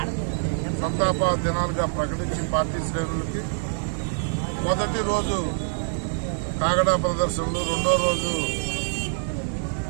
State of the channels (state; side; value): silent; left; 57 dB below the other